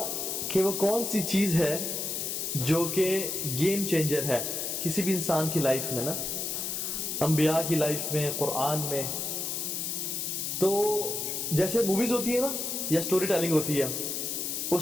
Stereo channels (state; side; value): noise; left; hiss, 2 dB below the sound